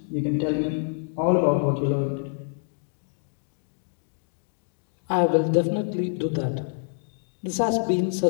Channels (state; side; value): silent; right; digital silence